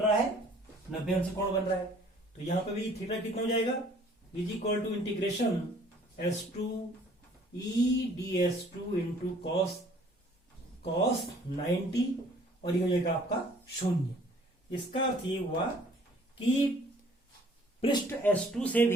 है, 90 अंश कोण बन रहा है। तो यहां पे भी थीटा कितना हो जाएगा, is equal to integration S2 E.ds2 into cos 90, और ये हो जाएगा आपका 0। इसका अर्थ ये हुआ कि पृष्ठ S2 से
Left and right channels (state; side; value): normal; both; correlation 0.56